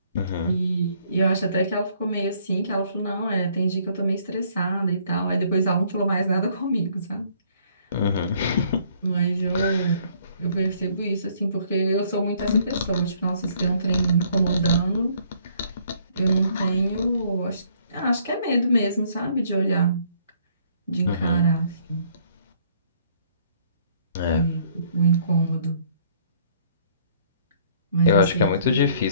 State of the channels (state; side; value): inverted; both; correlation -0.63